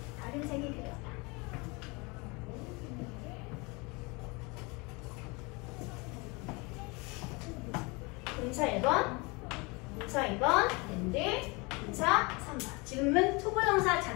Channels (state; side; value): quieter; right; 27.5 dB